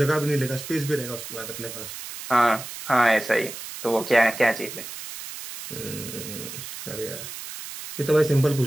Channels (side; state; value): right; noise; hiss, 10 dB below the sound